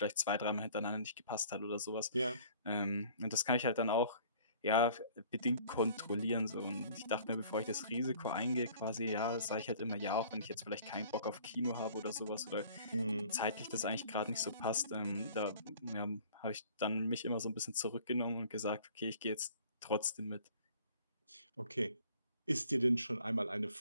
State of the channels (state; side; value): inverted; both; correlation -0.52